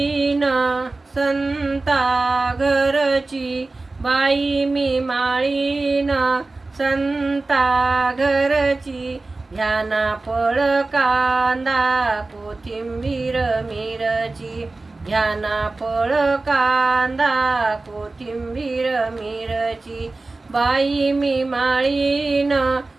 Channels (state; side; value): quieter; left; 3.3 dB